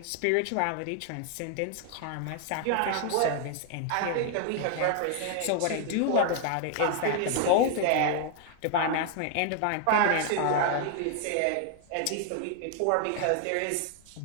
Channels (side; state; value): both; different; correlation 0.00